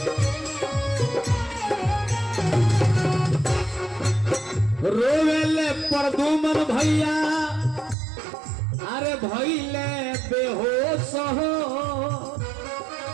रोवेले प्रदुमन भैया अरे भइले बेहोश हो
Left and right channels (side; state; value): left; drops out; at 8.0 s